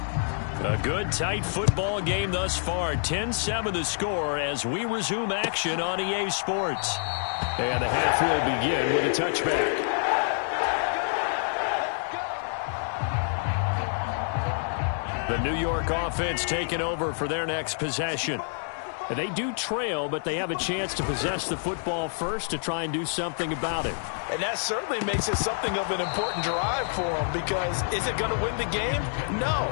A good, tight football game thus far. 10-7 the score as we resume action on EA Sports. And the half will begin with a touchback. The New York offense taking over for their next possession. They do trail, but they have a chance to possess the football first to try and do something about it. And that certainly makes it something of an important drive for them, because is it going to win the game? No,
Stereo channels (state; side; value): silent; right; digital silence